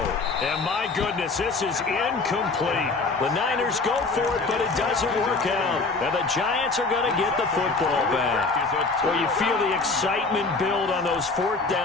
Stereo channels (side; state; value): right; quieter; 3.8 dB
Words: And my goodness, this is incomplete. The Niners go for it, but it doesn't work out. And the Giants are going to get the football back. Well, you feel the excitement build on those 4th